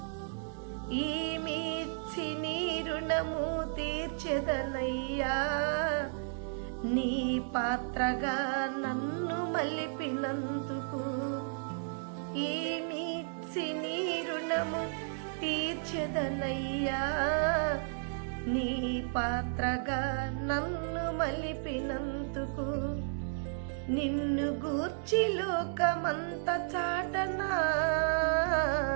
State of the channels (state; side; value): silent; left; digital silence